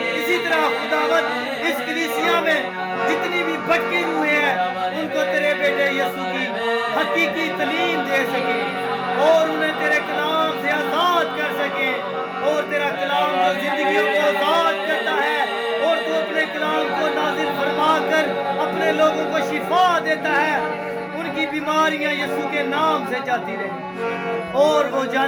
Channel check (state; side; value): identical; both; correlation 1.00